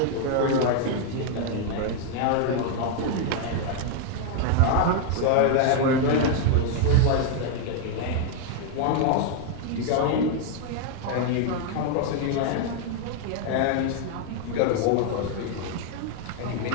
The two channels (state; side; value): different; both; correlation 0.00